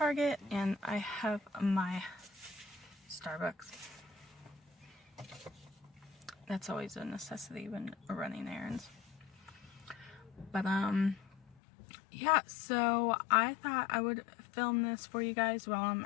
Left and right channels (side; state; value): right; drops out; at 11.6 s